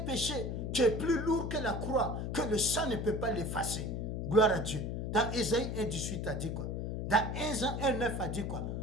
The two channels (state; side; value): noise; left; hum, 3 dB below the sound